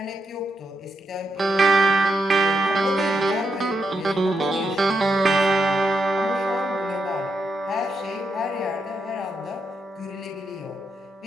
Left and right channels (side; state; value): both; normal; correlation 0.82